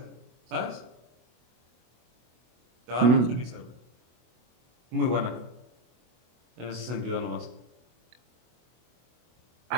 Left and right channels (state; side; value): late; left; 24 ms